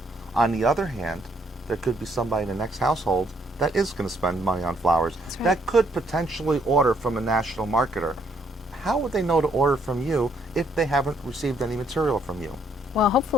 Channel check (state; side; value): normal; both; correlation 0.70